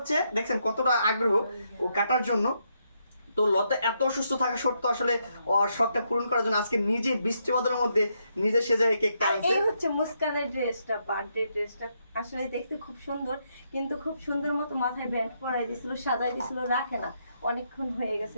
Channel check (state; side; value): inverted; both; correlation -0.78